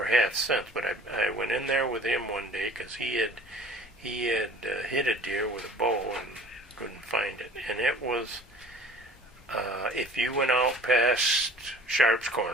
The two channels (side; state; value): both; normal; correlation 0.47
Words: have since. But I went in there with him one day because he had hit a deer with a bow and couldn't find it, and it was if you went out past Sharps